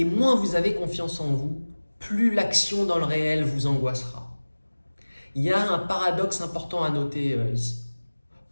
moins vous avez confiance en vous, plus l'action dans le réel vous angoissera. Il y a un paradoxe important à noter ici.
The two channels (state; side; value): inverted; both; correlation -1.00